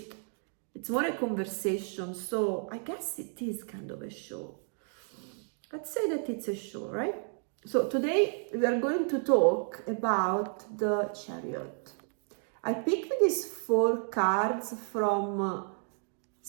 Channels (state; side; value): silent; left; 56 dB below the other